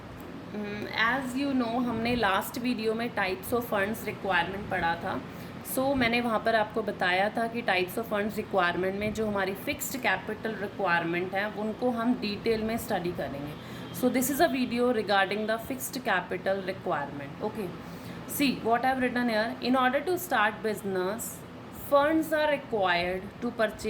As you know हमने last video में types of funds requirement पढ़ा था। मैंने वहाँ पर आपको बताया था कि टाइप्स ऑफ फंड्स रिक्वायरमेंट में जो हमारी फिक्स्ड कैपिटल रिक्वायरमेंट है उनको हम डिटेल में स्टडी करेंगे। This is a video regarding the fixed capital requirement. Okay, see what I have written here. In order to start business, funds are required to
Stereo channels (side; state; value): both; identical; correlation 1.00